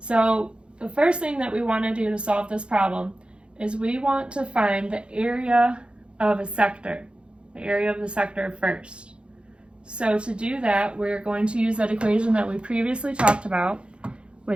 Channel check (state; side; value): late; left; 0.056 ms